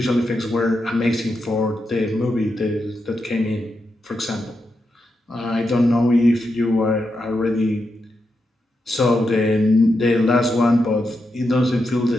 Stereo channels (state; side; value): normal; both; correlation 0.86